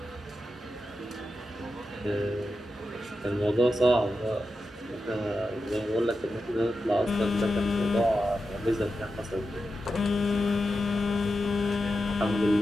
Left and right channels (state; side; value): normal; both; correlation 0.89